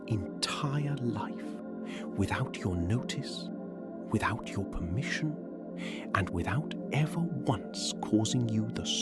entire life, without your notice, without your permission, and without ever once causing you the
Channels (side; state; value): both; identical; correlation 1.00